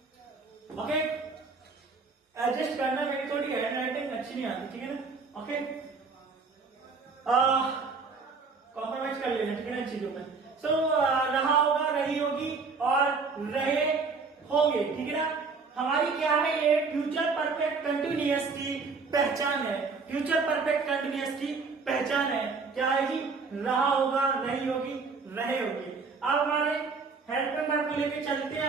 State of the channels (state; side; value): quieter; left; 4.6 dB